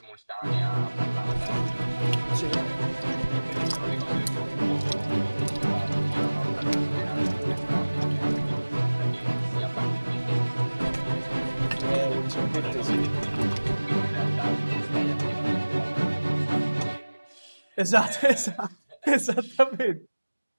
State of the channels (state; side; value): inverted; both; correlation -1.00